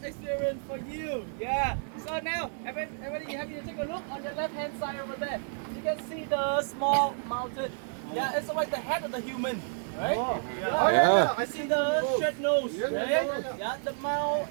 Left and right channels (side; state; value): left; silent; digital silence